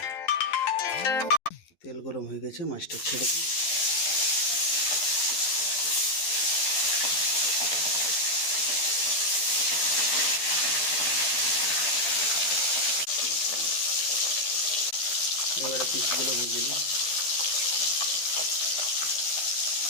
তেল গরম হয়ে গেছে, মাছটা ছেড়ে দিই। এবারে পিসগুলো ভেজে নিই।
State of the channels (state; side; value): late; right; 12 ms